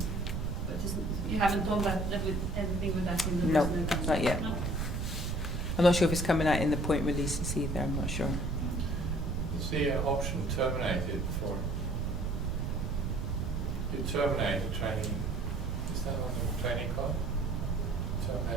you haven't done that with anything with that in the No, personal account? not yet. No? I'm not sure if it's coming out in the point releases either, I'm not sure. You see an option terminated for, you terminate the training, is that on the training card?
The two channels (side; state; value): right; noise; rumble, 1 dB below the sound